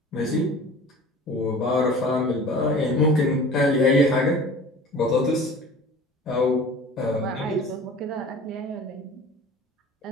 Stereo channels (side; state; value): both; normal; correlation 0.42